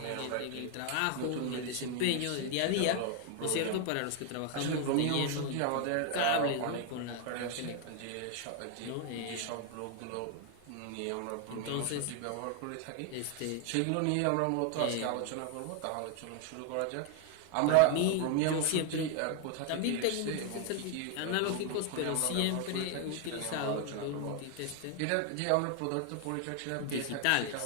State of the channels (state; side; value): different; both; correlation 0.00